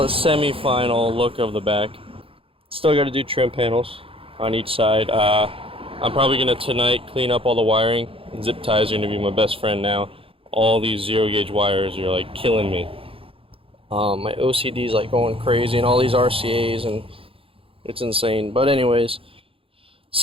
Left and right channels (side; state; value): left; late; 0.27 ms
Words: it semi-final look of the back. Still got to do trim panels on each side. I'm probably gonna tonight clean up all the wiring. Zip ties are gonna be my best friend now. All these 0-gauge wires are like killing me. My OCD is like going crazy, and all these RCA's, and it's insane. But anyways,